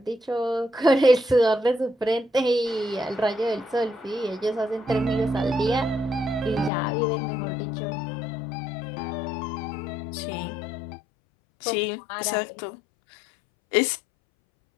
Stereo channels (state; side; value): drops out; right; at 6.7 s